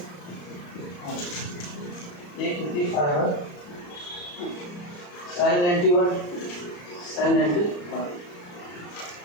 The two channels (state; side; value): late; right; 34 ms